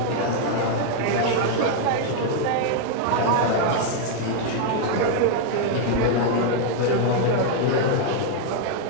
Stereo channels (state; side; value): different; both; correlation 0.00